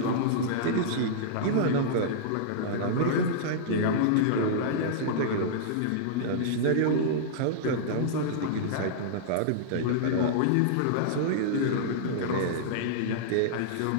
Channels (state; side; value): different; both; correlation -0.02